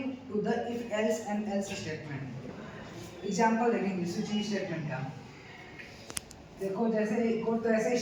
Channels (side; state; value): both; identical; correlation 1.00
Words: to the if else and else statement. Example देखेंगे स्विचिंग स्टेटमेंट का। देखो जैसे कोड तो ऐसे